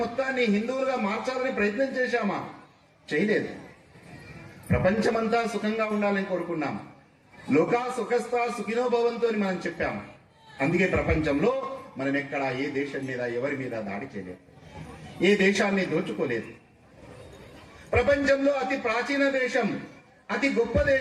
మొత్తాన్ని హిందువులుగా మార్చాలని ప్రయత్నం చేశామా? చేయలేదు. ప్రపంచమంతా సుఖంగా ఉండాలని కోరుకున్నాం. లోకా సుఖస్థ సుఖినో భవంతు అని మనం చెప్పాము. అందుకే ప్రపంచంలో మనం ఎక్కడ ఏ దేశం మీద, ఎవరి మీద దాడి చేయలేదు, ఏ దేశాన్ని దోచుకోలేదు. ప్రపంచంలో అతి ప్రాచీన దేశం, అతి గొప్ప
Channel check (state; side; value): identical; both; correlation 1.00